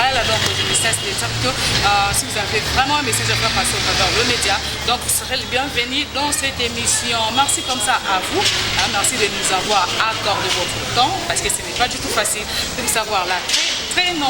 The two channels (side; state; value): both; identical; correlation 1.00